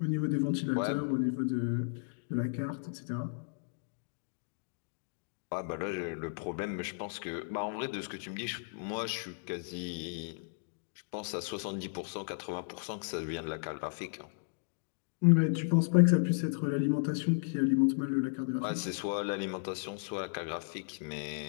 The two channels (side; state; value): right; silent; digital silence